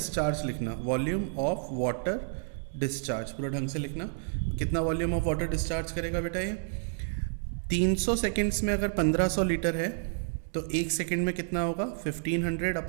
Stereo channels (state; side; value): silent; left; digital silence